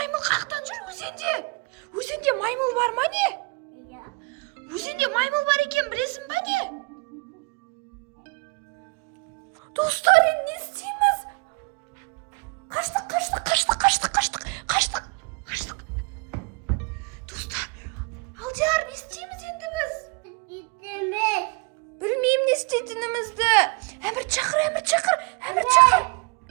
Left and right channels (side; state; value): left; quieter; 30.7 dB